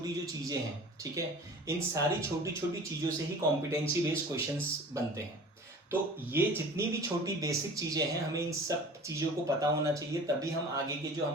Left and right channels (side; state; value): both; normal; correlation 0.41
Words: जो चीजें हैं, ठीक है, इन सारी छोटी छोटी चीजों से ही कॉम्पिटेंसी बेस्ड क्वेश्चंस बनते हैं। तो ये जितनी भी छोटी बेसिक चीजें हैं, हमें इन सब चीजों को पता होना चाहिए, तभी हम आगे के जो